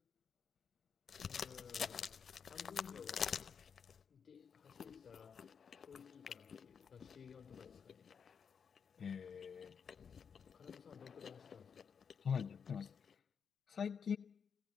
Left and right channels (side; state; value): right; quieter; 6.7 dB